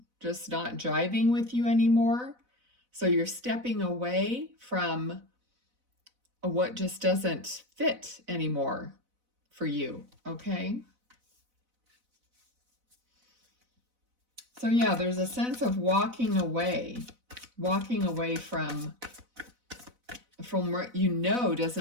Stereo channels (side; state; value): left; late; 4.0 ms